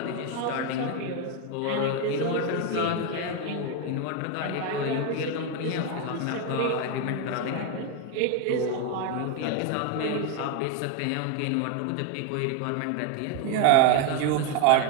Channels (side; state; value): both; different; correlation 0.01